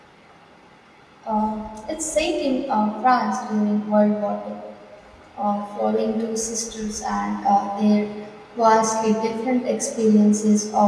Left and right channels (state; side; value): identical; both; correlation 1.00